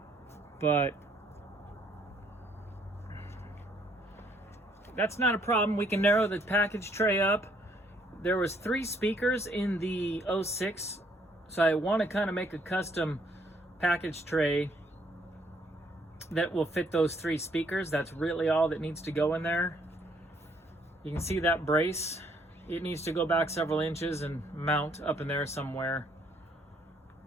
But that's not a problem. We can narrow the package tray up. There was 3 speakers in the 06, so I want to kind of make a custom package tray that will fit those 3 speakers. That's really all that needs to go in there. You can see that brace. It needs to go back several inches and mount up in there somewhere.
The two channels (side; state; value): both; normal; correlation 0.67